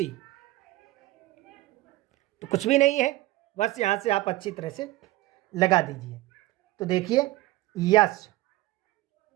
तो कुछ भी नहीं है, बस यहां से आप अच्छी तरह से लगा दीजिए। तो देखिए यस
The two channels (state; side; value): quieter; left; 18.0 dB